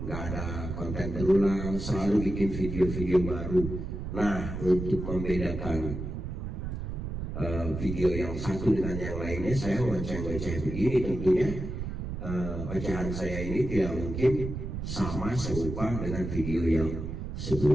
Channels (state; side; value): noise; right; rumble, 5 dB below the sound